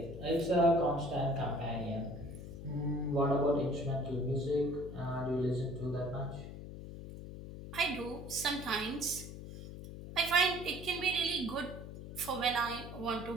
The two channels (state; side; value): noise; left; hum, 11 dB below the sound